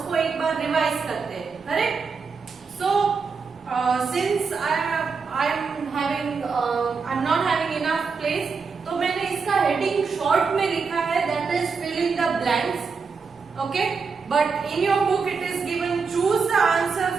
एक बार revise करते हैं, correct? So since I'm not having enough place, तो मैंने इसका heading short में लिखा है, that is fill in the blanks, okay? But in your book it is given choose the answer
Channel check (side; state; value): left; quieter; 5.2 dB